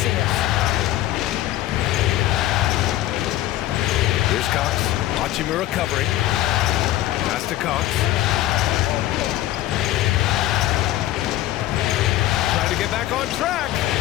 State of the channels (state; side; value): quieter; right; 14.9 dB